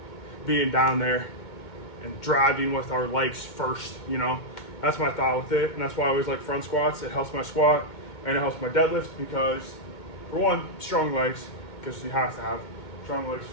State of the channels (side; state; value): right; late; 2.2 ms